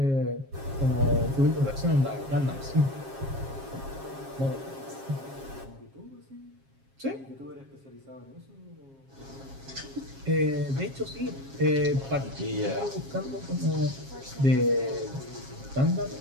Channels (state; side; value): late; left; 7.4 ms